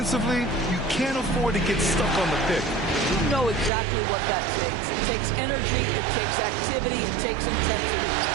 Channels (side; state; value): left; drops out; at 3.7 s